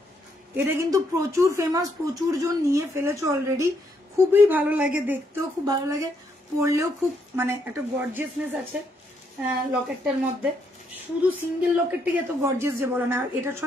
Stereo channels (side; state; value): both; normal; correlation 0.75